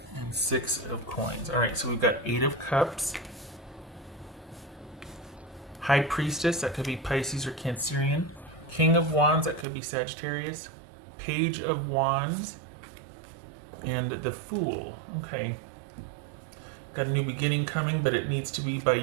And 6 of coins. Alright, so we've got 8 of cups. High Priestess, that could be Pisces or Cancerian. King of Wands, that could be Sagittarius. Page of Wands. And the Fool. Okay. Got a new beginning coming, but it needs to be by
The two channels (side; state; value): left; drops out; at 9.7 s